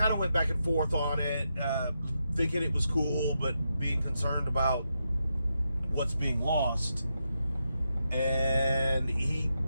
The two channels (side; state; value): both; inverted; correlation -0.84